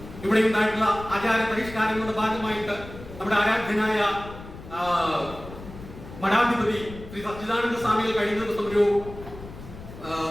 ഇവിടെ ഉണ്ടായിട്ടുള്ള ആചാര പരിഷ്കാരങ്ങളുടെ ഭാഗമായിട്ട് നമ്മുടെ ആരാധ്യനായ മഠാധിപതി ശ്രീ സച്ചിദാനന്ദ സ്വാമികൾ കഴിഞ്ഞ ദിവസം ഒരു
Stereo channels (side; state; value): left; noise; rumble, 14 dB below the sound